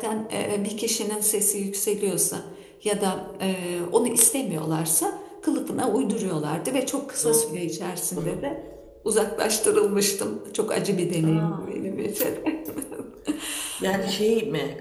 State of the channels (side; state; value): both; identical; correlation 1.00